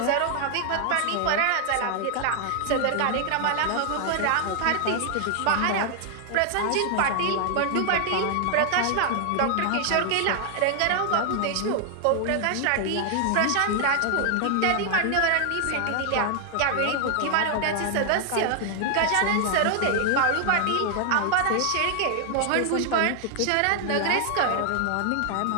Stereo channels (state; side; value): different; both; correlation 0.00